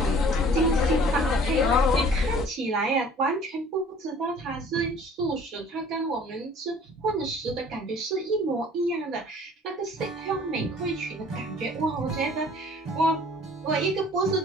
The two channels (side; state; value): both; normal; correlation 0.51